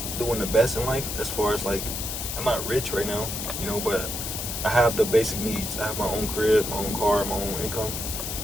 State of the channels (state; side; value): noise; left; hiss, 4 dB below the sound